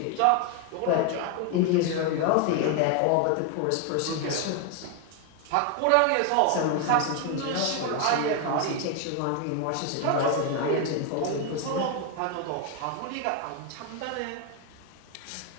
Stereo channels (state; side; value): different; both; correlation 0.01